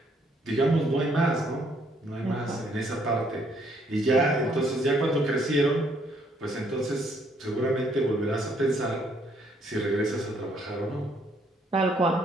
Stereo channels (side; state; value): both; normal; correlation 0.68